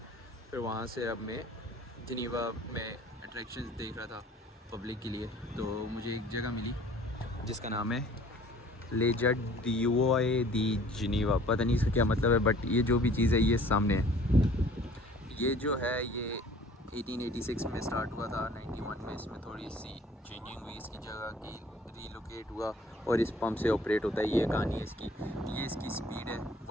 फिर वहाँ से अब मैं जिनीवा में अट्रैक्शंस देख रहा था पब्लिक के लिए। तो मुझे एक जगह मिली जिसका नाम है लेजर डिओए दी जिनीवा। पता नहीं इसका क्या मतलब है, बट ये जो भी चीज़ है ये सामने है। ये जो है ये 1886 में स्टार्ट हुआ था, 91 में इसमें थोड़ी सी चेंजिंग हुई, इसकी जगह की रीलोकेट हुआ और इस पंप से ऑपरेट होता है। ये कहानी है इसकी। ये इसकी स्पीड है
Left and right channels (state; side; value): normal; both; correlation 0.52